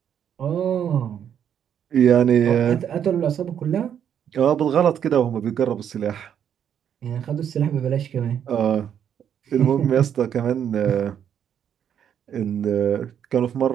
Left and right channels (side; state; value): left; quieter; 8.9 dB